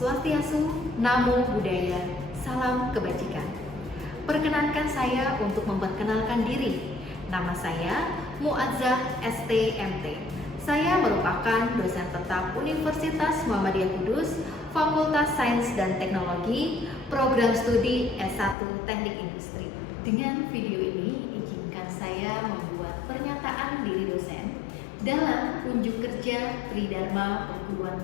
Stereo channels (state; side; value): drops out; right; at 18.6 s